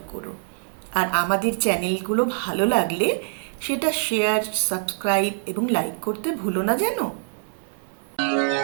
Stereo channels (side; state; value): left; silent; 62 dB below the other